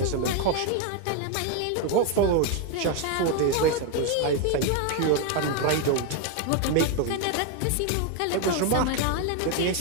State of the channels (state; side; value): different; both; correlation 0.01